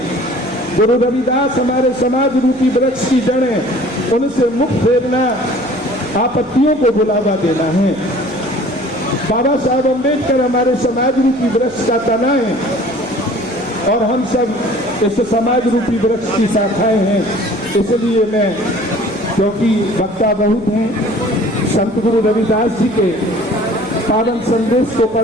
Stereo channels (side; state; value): left; noise; hum, 26 dB below the sound